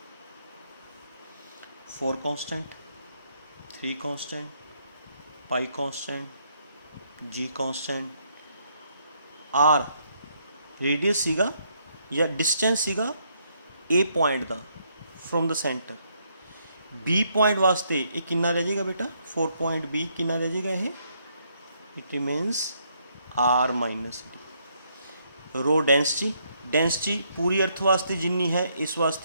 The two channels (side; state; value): both; inverted; correlation -0.73